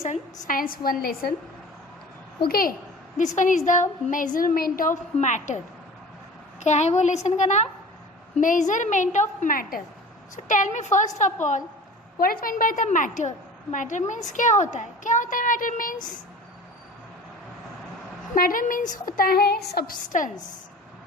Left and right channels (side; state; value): both; normal; correlation 0.40